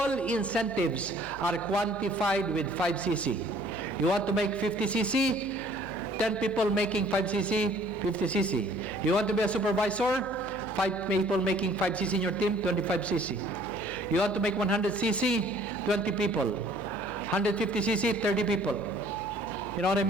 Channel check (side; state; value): left; noise; hum, 18 dB below the sound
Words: incentives are quantified with 5CC. You want to make 50CC, 10 people making 5CC, 50CC. You want to be a supervisor, 5 people making 5CC in your team, 25CC. You want to make 100CC, 20 people. 150cc, 30 people. You know what I